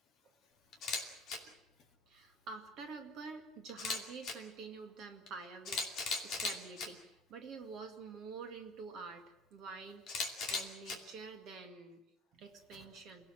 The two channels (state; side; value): normal; both; correlation 0.44